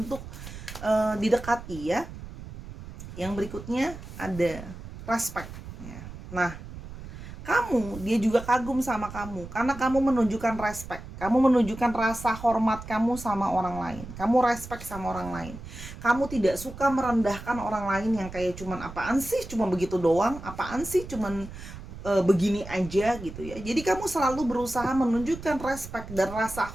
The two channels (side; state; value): right; noise; rumble, 13 dB below the sound